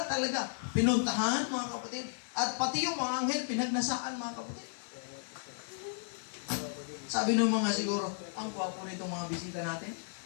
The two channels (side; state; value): right; silent; digital silence